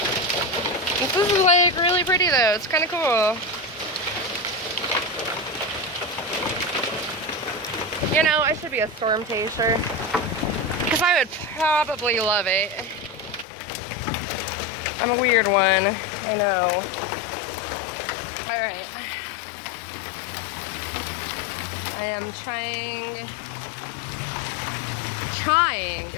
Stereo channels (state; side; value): drops out; right; at 13.5 s